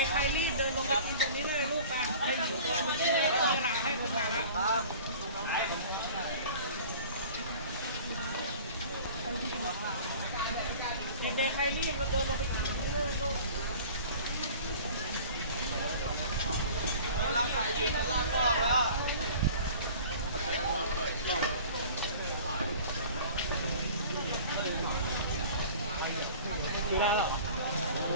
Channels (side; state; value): both; inverted; correlation -0.43